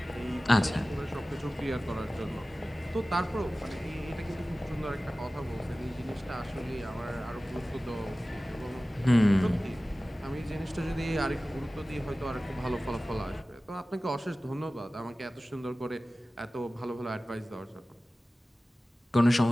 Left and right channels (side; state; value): both; normal; correlation 0.96